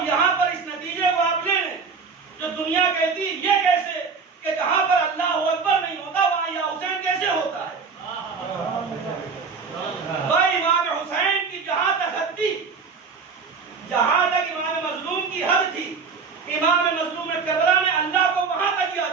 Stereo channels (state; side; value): quieter; left; 5.2 dB